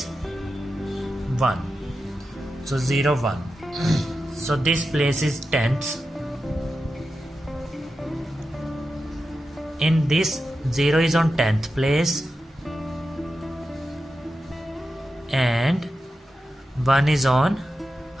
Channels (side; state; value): both; normal; correlation 0.90